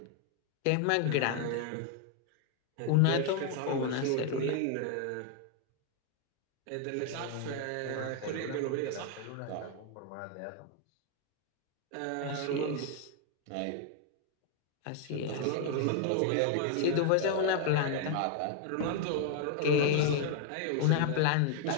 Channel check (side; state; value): both; different; correlation 0.00